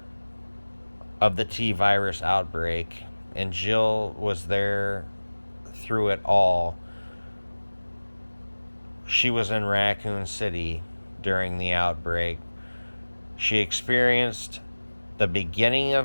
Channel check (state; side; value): inverted; both; correlation -1.00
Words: of the T-virus outbreak, and Jill was there through it all. She was in Raccoon City during the outbreak. She experienced the beginning